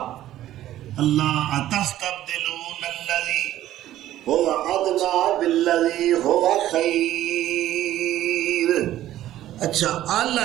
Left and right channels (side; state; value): left; quieter; 13.5 dB